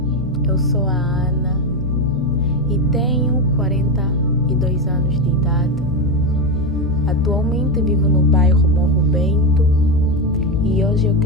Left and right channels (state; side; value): noise; left; hum, 6 dB below the sound